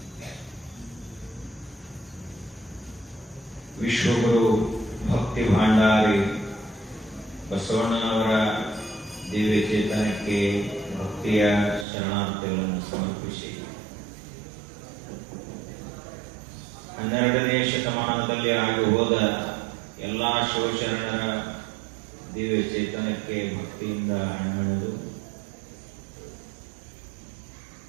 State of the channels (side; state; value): left; drops out; at 11.9 s